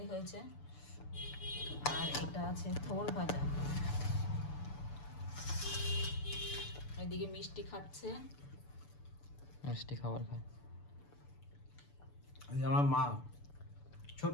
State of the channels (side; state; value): right; late; 6.9 ms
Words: হয়েছে, আর এটা আছে থোর ভাজা। এদিকে মিষ্টি খাচ্ছে। মিষ্টি খাবার খায়। এই আমার মা,